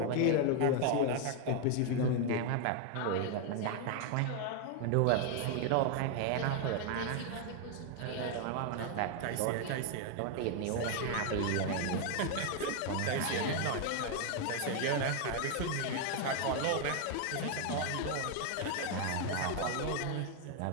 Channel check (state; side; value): different; both; correlation 0.00